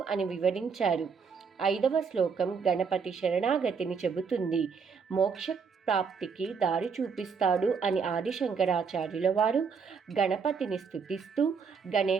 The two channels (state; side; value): quieter; left; 5.7 dB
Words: అని వివరించారు. ఐదవ శ్లోకం గణపతి శరణాగతిని చెబుతుంది. మోక్ష ప్రాప్తికి దారి చూపిస్తాడు అని ఆదిశంకరాచార్యుల వారు గణపతిని స్తుతిస్తూ